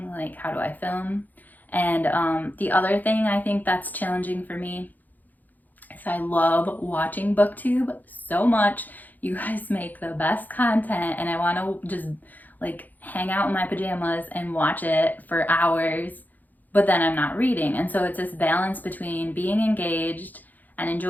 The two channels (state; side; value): late; right; 0.083 ms